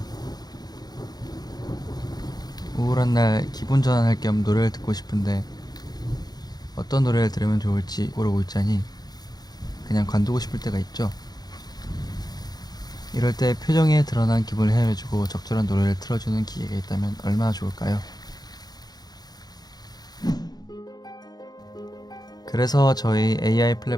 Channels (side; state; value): right; late; 0.19 ms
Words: 우울한 날 기분 전환할 겸 노래를 듣고 싶은데 어떤 노래를 들으면 좋을지 고르고 있자니 그냥 관두고 싶을 때가 있죠. 이럴 때 표정에 드러난 기분을 헤아려주고 적절한 노래를 틀어주는 기계가 있다면 얼마나 좋을까요? 그래서 저희 AI